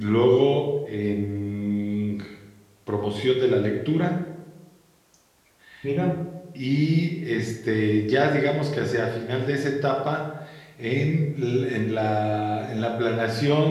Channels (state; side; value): identical; both; correlation 1.00